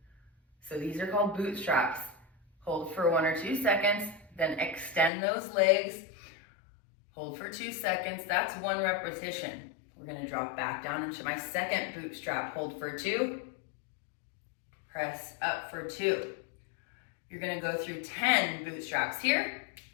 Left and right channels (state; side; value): drops out; right; at 5.1 s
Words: So these are called bootstraps. Hold for 1 or 2 seconds, then extend those legs. Hold for 2 seconds, that's 1 repetition. We're gonna drop back down into my second bootstrap. Hold for 2, press up for 2. You're gonna go through 10 bootstraps here,